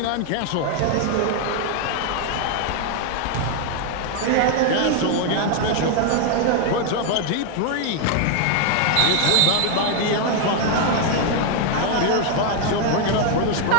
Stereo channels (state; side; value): different; both; correlation 0.01